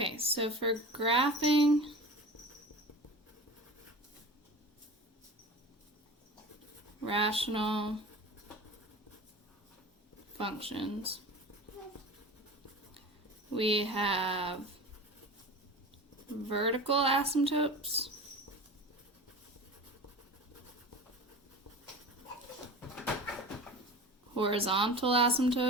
so for graphing rational functions, we have vertical asymptotes, horizontal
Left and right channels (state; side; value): normal; both; correlation 0.34